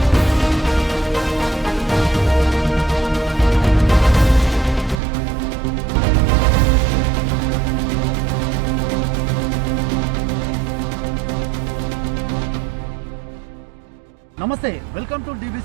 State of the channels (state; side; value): drops out; left; at 5.0 s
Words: నమస్తే, welcome to